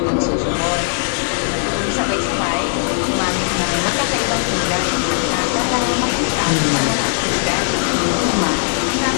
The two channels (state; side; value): silent; right; digital silence